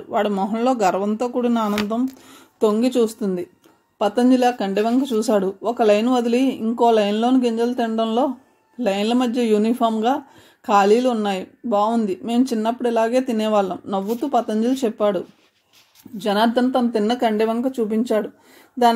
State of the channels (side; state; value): both; identical; correlation 1.00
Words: వాడి మొహంలో గర్వంతో కూడిన ఆనందం తొంగి చూస్తుంది. పతంజలి ఆ కంటి వంక చూశాడు. ఒక లైన్ వదిలి ఇంకో లైన్లోని గింజలు తినడంలో లైన్ల మధ్య యూనిఫామ్గా ఖాళీలు ఉన్నాయి. బాగుంది. మేము చిన్నప్పుడు ఇలాగే తినేవాళ్ళం నవ్వుతూ పతంజలి చెప్పాడు. జనార్దన్ తను తిన్న కండె వంక చూపించాడు.